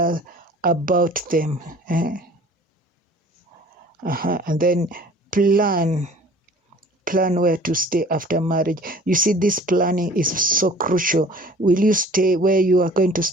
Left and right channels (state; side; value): normal; both; correlation 0.48